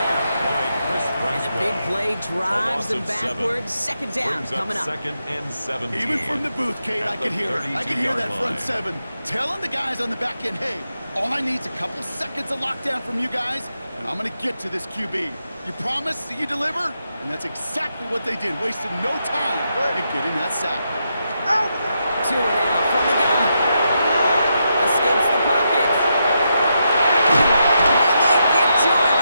And the big play drives them backwards. Second down coming up. Second and 17. Even from the booth, Kate, I could hear it. I could hear that front seven telling the guys on the back end, hey, all I need is a couple seconds of lockdown from you guys, and I'm going to get to this QB. You promise that you deliver? And that's exactly what they did, wasting no time in getting that sack. Out! Tua now from the gun. Escapes the pocket. And they get to him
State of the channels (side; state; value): both; inverted; correlation -0.84